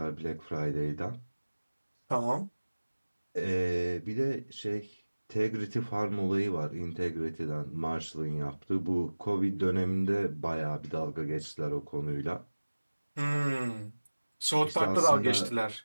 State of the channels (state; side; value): inverted; both; correlation -1.00